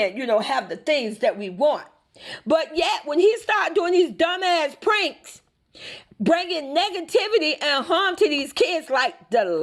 have the things that we want. But yet, when he started doing these dumbass pranks, bringing negativity and harm to these kids, like the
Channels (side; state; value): both; identical; correlation 1.00